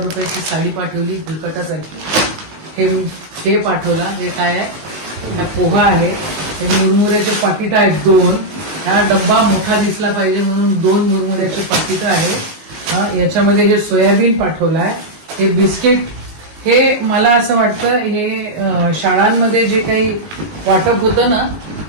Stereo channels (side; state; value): left; late; 19 ms